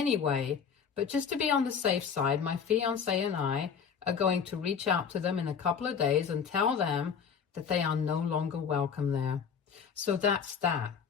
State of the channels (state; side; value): quieter; right; 6.8 dB